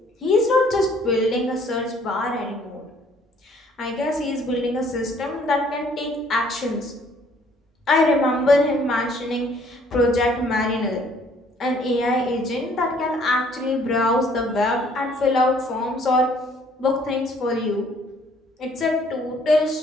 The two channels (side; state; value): both; normal; correlation 0.61